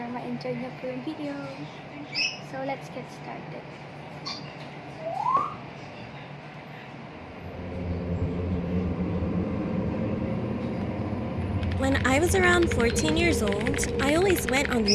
ma-enjoy nyo po yung video. So let's get started. When I was around 14 years old, I always went on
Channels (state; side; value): identical; both; correlation 1.00